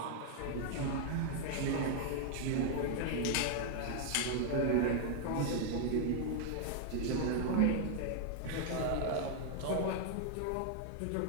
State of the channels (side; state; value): both; different; correlation 0.00